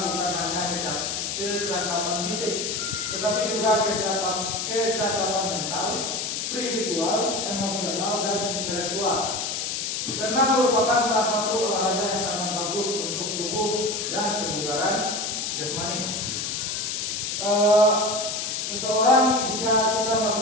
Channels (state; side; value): noise; left; hiss, 2 dB below the sound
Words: bukan hanya kecakapan fisik, tetapi juga kecakapan mental, spiritual, emosional, dan intelektual. Senam merupakan salah satu olahraga yang sangat bagus untuk tubuh dan kebugaran jasmani. Seseorang jika kita